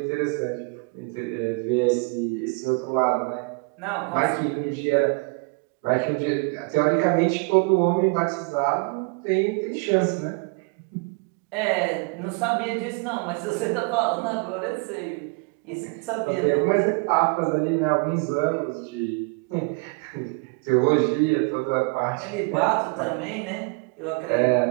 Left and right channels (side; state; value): left; quieter; 31.7 dB